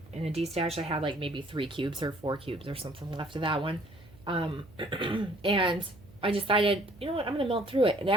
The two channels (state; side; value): noise; right; hum, 23 dB below the sound